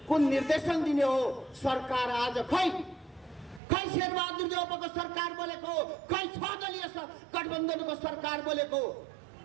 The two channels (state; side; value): drops out; left; at 3.6 s